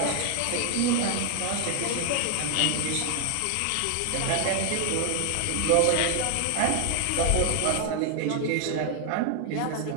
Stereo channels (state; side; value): different; both; correlation 0.01